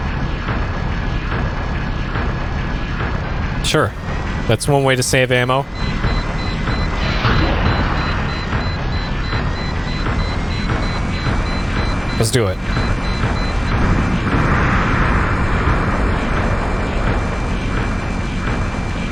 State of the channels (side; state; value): both; identical; correlation 1.00